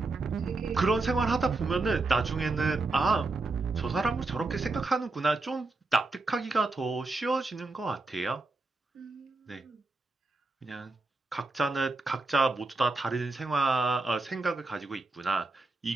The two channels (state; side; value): quieter; left; 3.4 dB